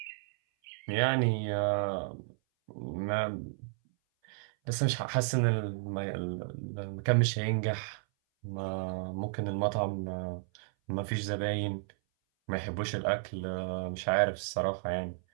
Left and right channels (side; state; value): left; silent; 56 dB below the other